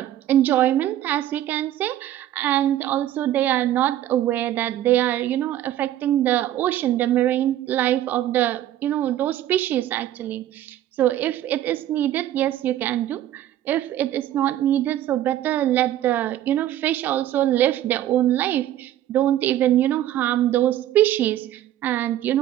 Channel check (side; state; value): left; quieter; 12.6 dB